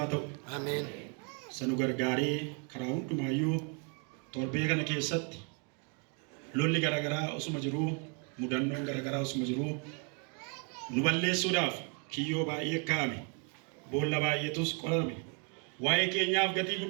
ta'u. Ameen. Sanu gargaaree karaa hundumaayyuu torbee kana keessatti lolli garaagaraa osuma jiruu, mudannoon garaagaraa osuma jiruu nu balleessuudhaaf kiyyoo baay'ee kaa'ame, boolla baay'eetus qolame, waa'ee keenyaaf gatii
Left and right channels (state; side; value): quieter; left; 37.2 dB